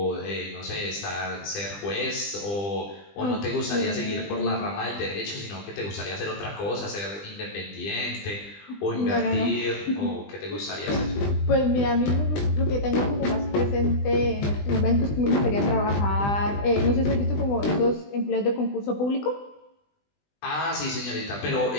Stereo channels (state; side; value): late; right; 20 ms